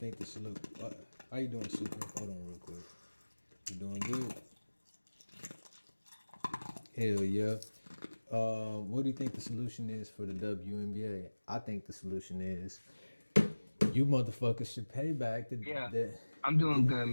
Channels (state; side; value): inverted; both; correlation -1.00